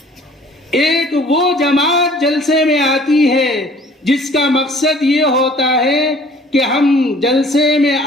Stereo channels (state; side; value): normal; both; correlation 0.53